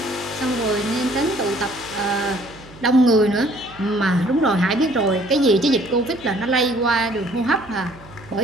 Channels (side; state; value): right; noise; hum, 21 dB below the sound